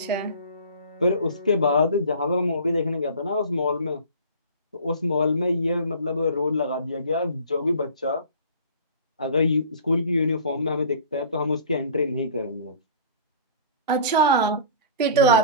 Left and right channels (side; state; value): both; inverted; correlation -0.42